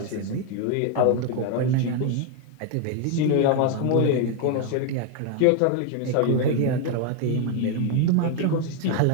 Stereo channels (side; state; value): both; different; correlation 0.00